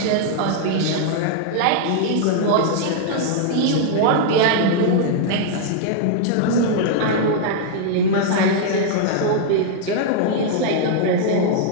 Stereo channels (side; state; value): both; different; correlation -0.01